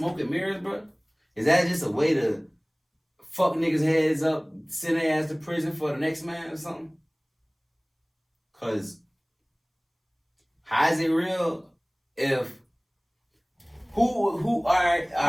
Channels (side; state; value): both; identical; correlation 1.00